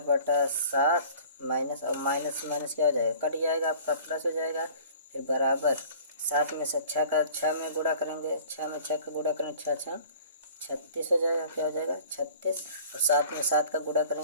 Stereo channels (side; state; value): both; inverted; correlation -0.47